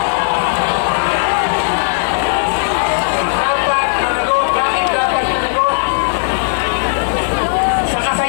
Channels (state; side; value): silent; right; digital silence